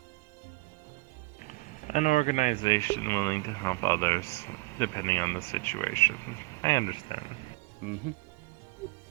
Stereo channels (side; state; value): left; quieter; 22.8 dB